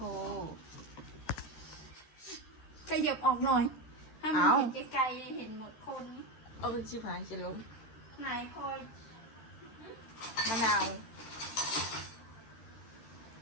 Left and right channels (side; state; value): right; late; 13 ms